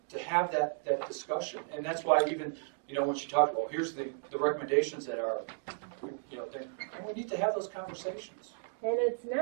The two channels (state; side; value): silent; left; digital silence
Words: to have that discussion. And that's why even, when she talked about, here's the recommendations that are, we need to have those conversations. And it's